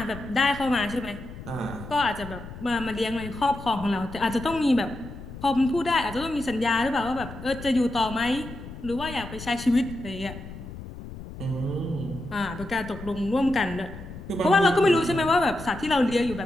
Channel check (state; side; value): noise; left; rumble, 13 dB below the sound